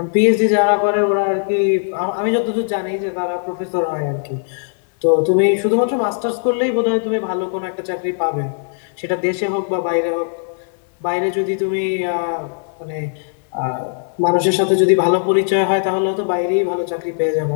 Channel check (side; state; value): right; silent; digital silence